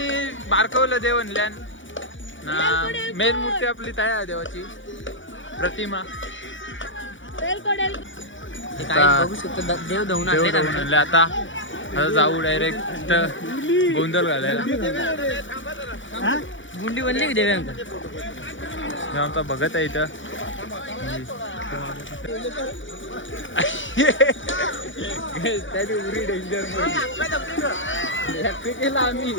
बारकवलं देवणल्यान ना. मेन मूर्ती आपली तयार देवाची प्रतिमा. बघू शकतो देव धुवून आणले. आता जाऊ डायरेक्ट गोंधळ घालायला. गुंडी बनली की देव्यांका आमचा बघत आहे इथं. त्याने उरी डेंजर केला आम्ही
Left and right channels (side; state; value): right; late; 0.56 ms